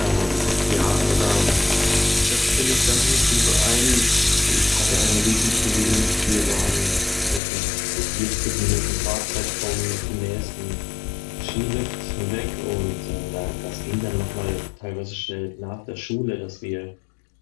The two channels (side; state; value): right; drops out; at 7.4 s